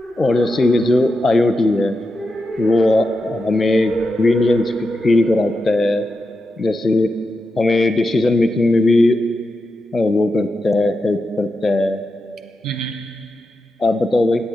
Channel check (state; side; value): normal; both; correlation 0.88